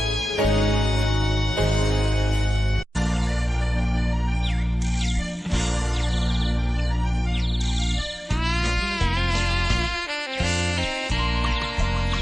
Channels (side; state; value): both; normal; correlation 0.94